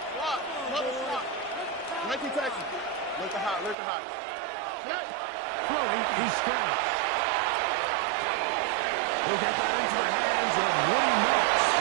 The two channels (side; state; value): left; drops out; at 3.8 s